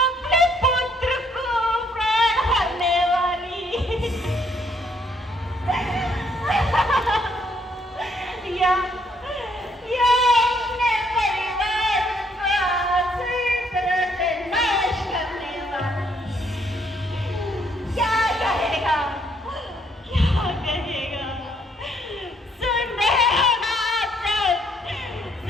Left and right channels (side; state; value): both; normal; correlation 0.69